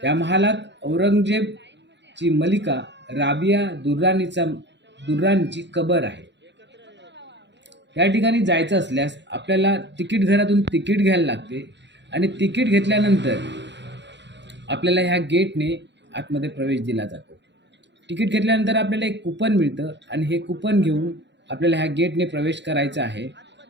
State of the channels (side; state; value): left; late; 0.52 ms